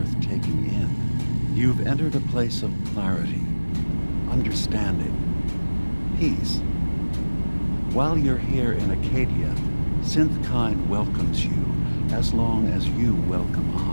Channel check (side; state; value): both; inverted; correlation -1.00